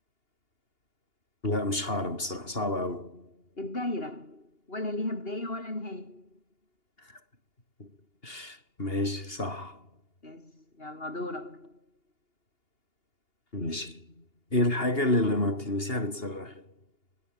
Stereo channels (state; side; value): late; right; 2.8 ms